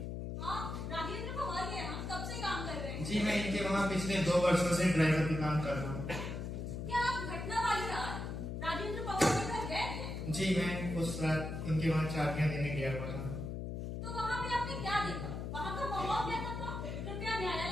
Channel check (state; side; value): noise; left; hum, 5 dB below the sound